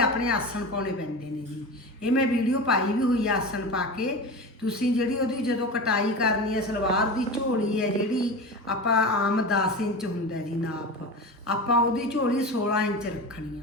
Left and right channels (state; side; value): normal; both; correlation 0.27